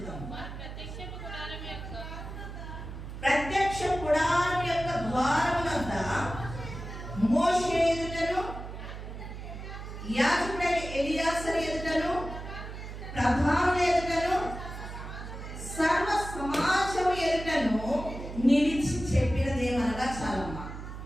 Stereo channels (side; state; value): right; noise; hum, 10 dB below the sound